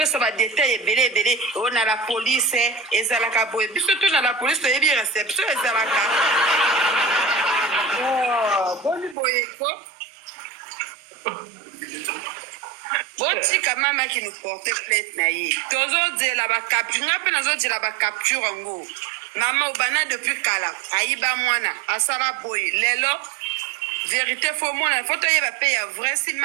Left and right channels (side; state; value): left; drops out; at 9.2 s